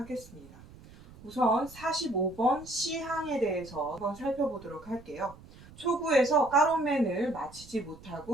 우선 45번 C항에 대해서 한번 살펴보도록 할게요. 초구에서 까로맨을 맞히지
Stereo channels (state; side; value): noise; right; rumble, 20 dB below the sound